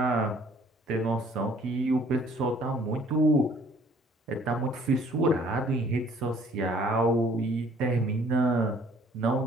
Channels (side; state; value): both; normal; correlation 0.58